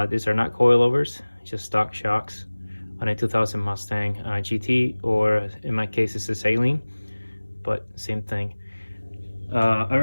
These are not coilovers, just stock shocks on a 2000 Mustang GT, or in my case it's a Saline, but same thing. I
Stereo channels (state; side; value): inverted; both; correlation -1.00